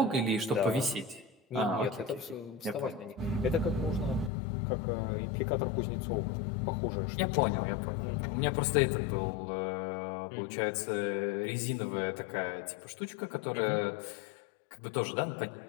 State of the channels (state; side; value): drops out; right; at 4.3 s